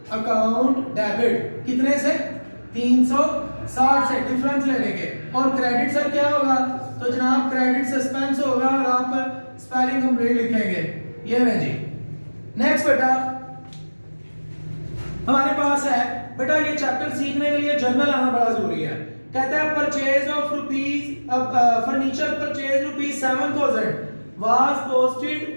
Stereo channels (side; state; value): both; inverted; correlation -1.00